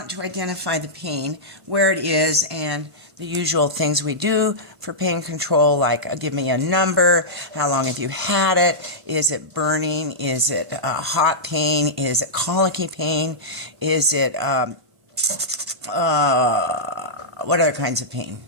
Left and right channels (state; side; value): late; left; 1.1 ms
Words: to identify the pain, where it is, and the usual things we do for pain control, like give me a number, how long have you had it, is it burning, is it hot pain, is it colicky pain, is it, what other kinds of pain?